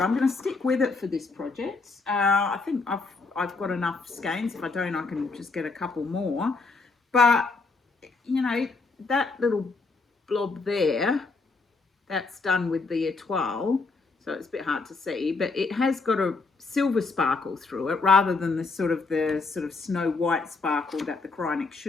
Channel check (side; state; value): right; quieter; 4.0 dB